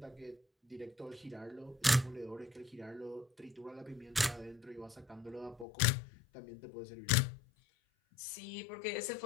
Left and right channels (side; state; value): right; drops out; at 5.7 s